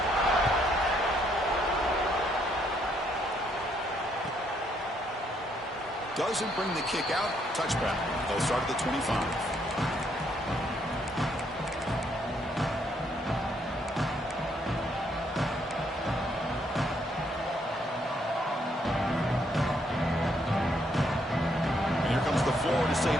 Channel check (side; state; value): both; normal; correlation 0.72